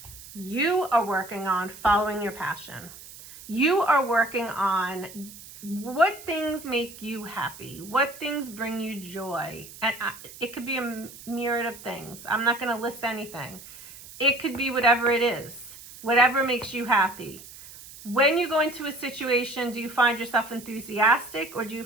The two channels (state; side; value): noise; right; hiss, 17 dB below the sound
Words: You are working on following your passion. You are working on what things make you happy? What things bring you joy? And it could be a myriad of things. I'm not going to list anything. It could be whatever it is, whatever makes you happy. When you go into a situation, do you find yourself enthusiastic or do you